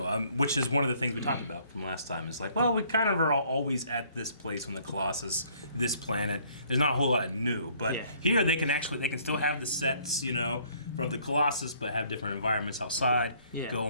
which is one of the things we talked about from last time. It's like, well, we kind of are always at this place on the Colossus, this planet. There's not a whole lot of new, but here they can still have the sets, you know, from the Colossus, but have different environments outside. Go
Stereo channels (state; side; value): inverted; both; correlation -0.61